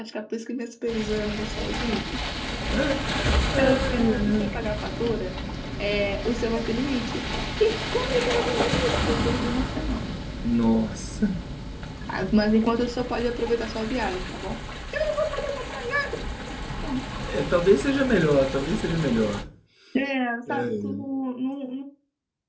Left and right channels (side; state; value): both; identical; correlation 1.00